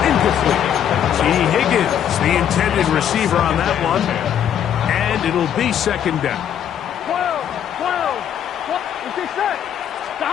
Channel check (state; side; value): quieter; right; 9.5 dB